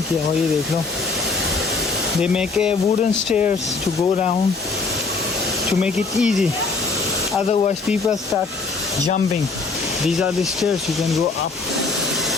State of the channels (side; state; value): right; quieter; 4.1 dB